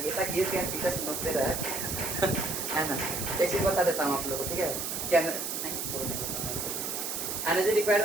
ऐसा घिस दिया टीचर समझते रहे है ना। एक चीज बता देता हूँ आप लोगों को, ठीक है, क्या नहीं छोड़ने एनर्जी रिक्वायर्ड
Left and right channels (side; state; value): right; noise; hiss, 3 dB below the sound